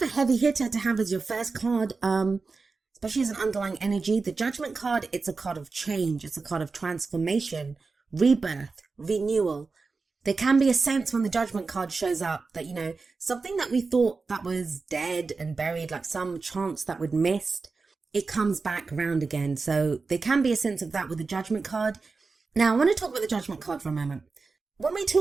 a heavy hitter to have as your first card, especially as an underlying energy. The Judgment card, it's a card of change. It's a card of transformation, rebirth, renewal. There can be a sense when the Judgment card shows up that, something that we thought that was dead and buried, like some chance that we'd missed, it comes back around again. So there can be a sense of that with the Judgment card. Now, I want to talk about the Judgment card for a moment. When we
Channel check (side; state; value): left; quieter; 4.3 dB